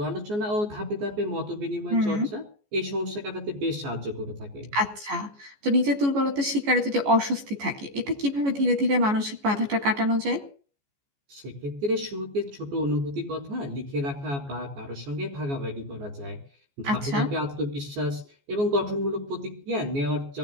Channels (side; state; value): left; late; 14 ms